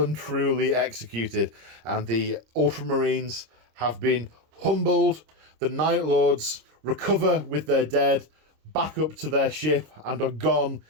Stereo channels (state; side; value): late; left; 26 ms